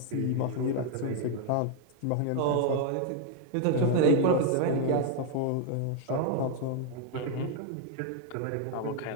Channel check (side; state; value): both; different; correlation 0.01